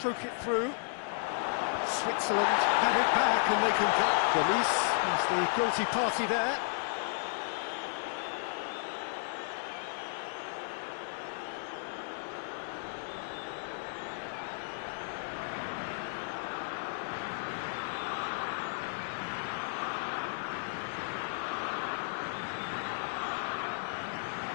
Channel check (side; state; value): right; silent; digital silence